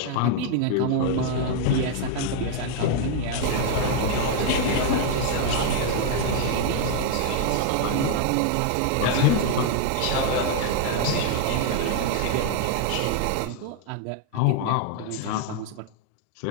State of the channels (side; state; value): both; different; correlation 0.00